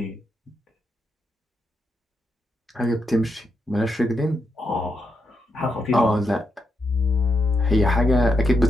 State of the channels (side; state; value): both; normal; correlation 0.82